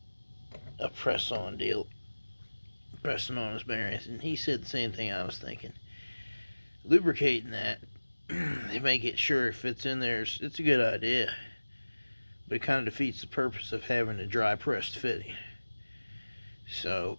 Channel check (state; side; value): inverted; both; correlation -1.00